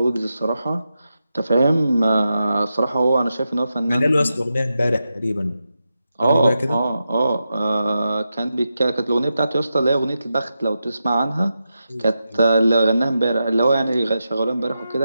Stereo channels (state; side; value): inverted; both; correlation -0.89